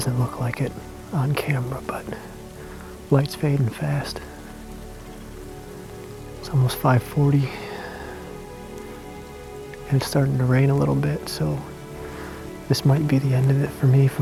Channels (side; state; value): both; identical; correlation 1.00